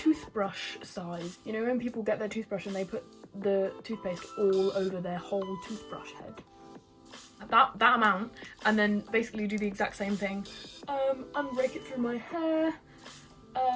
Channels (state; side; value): identical; both; correlation 1.00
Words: size. You know, when people get their toothbrush and they put the toothpaste all over their whole toothbrush head. That amount, and then basically do the exact same thing. And rake it through my hair.